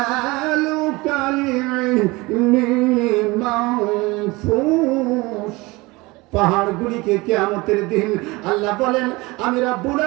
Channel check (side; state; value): left; quieter; 22.9 dB